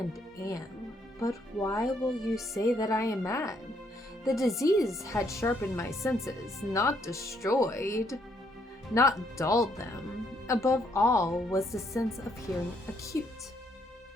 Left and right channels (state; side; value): normal; both; correlation 0.71